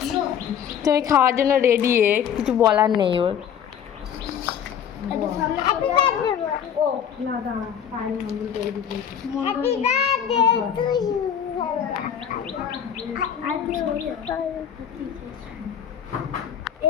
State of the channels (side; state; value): right; quieter; 8.5 dB